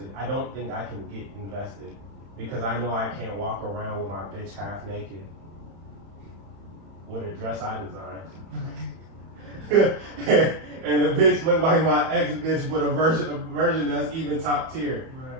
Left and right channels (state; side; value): late; left; 31 ms